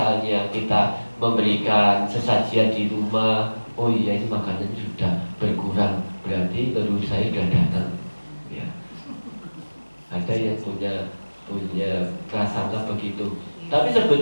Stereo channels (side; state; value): both; inverted; correlation -1.00